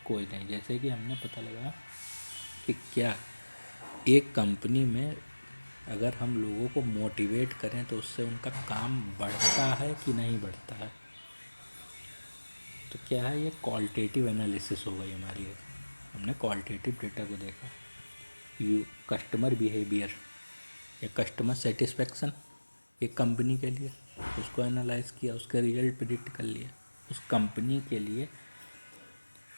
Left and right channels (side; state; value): both; inverted; correlation -1.00